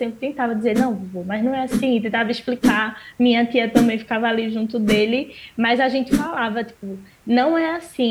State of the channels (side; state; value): both; identical; correlation 1.00